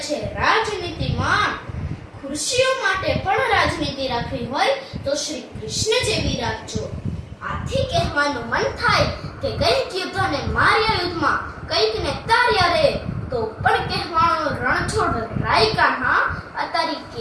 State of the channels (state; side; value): identical; both; correlation 1.00